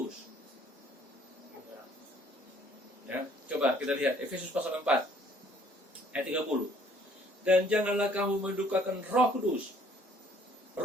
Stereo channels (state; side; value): normal; both; correlation 0.60